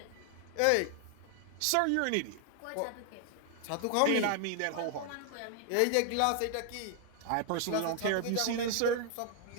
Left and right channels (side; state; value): both; different; correlation 0.00